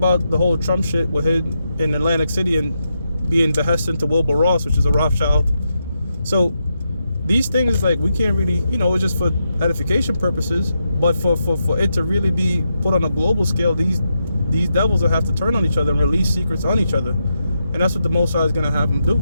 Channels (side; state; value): both; inverted; correlation -0.84